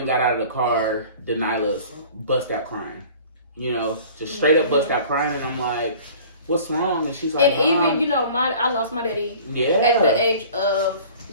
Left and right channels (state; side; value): inverted; both; correlation -0.46